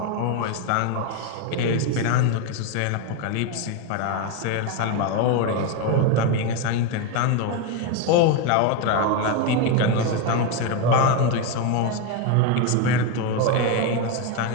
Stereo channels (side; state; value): both; different; correlation 0.02